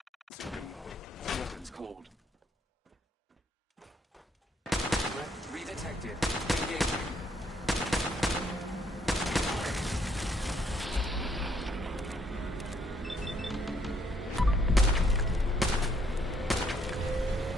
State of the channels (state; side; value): normal; both; correlation 0.70